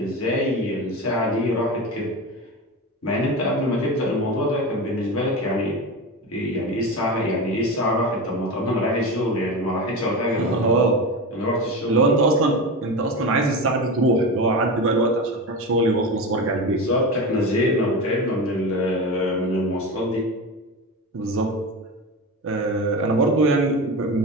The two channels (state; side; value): normal; both; correlation 0.24